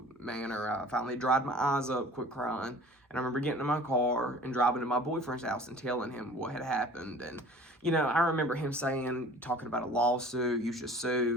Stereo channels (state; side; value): normal; both; correlation 0.46